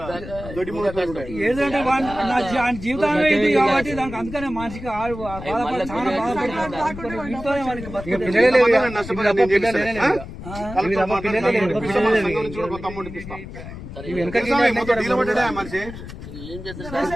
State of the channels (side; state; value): left; noise; rumble, 12 dB below the sound